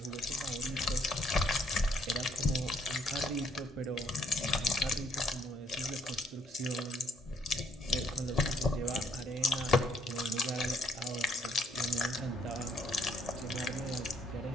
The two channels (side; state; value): both; normal; correlation 0.68